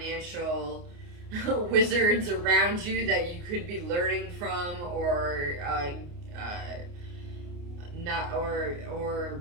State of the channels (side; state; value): left; late; 29 ms